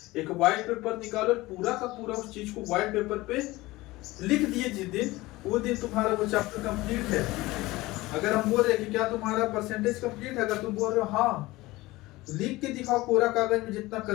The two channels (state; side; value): quieter; right; 19.7 dB